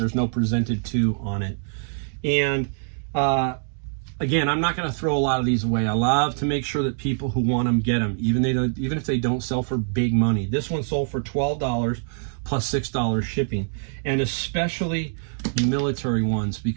no presented to on it. And again, I'm not going to throw a lot of these away. I love to make sure that people who want them get them, even if they don't sell for big money. This one sold for $12 plus $6 shipping, and especially the military ones,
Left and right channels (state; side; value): silent; left; digital silence